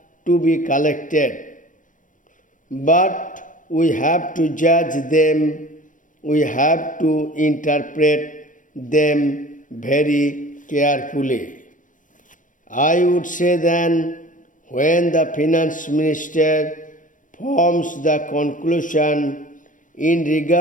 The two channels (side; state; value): right; late; 0.38 ms